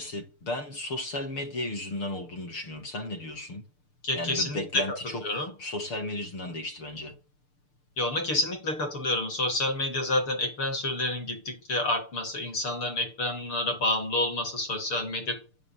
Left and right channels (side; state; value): right; late; 6.7 ms